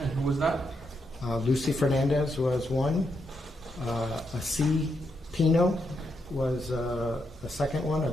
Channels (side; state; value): both; normal; correlation 0.81